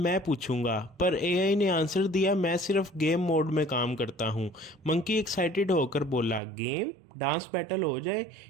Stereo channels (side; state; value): left; drops out; at 6.4 s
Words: पूछूंगा, पर एआई ने आंसर दिया, मैं सिर्फ गेम मोड में काम करता हूँ। मंकी एक्साइटेड होकर बोला, गेम, डांस बैटल हो जाए।